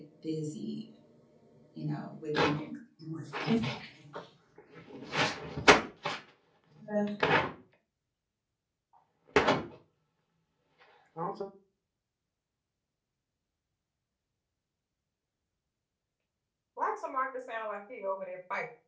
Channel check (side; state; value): both; identical; correlation 1.00